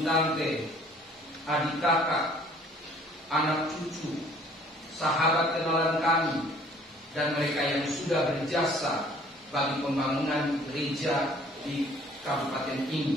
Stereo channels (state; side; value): normal; both; correlation 0.55